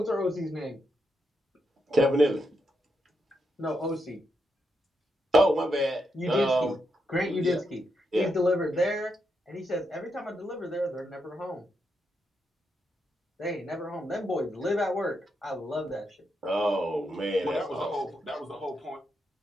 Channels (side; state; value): both; normal; correlation 0.82